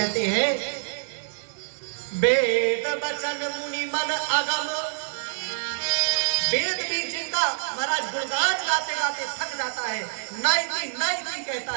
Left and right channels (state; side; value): silent; left; 61 dB below the other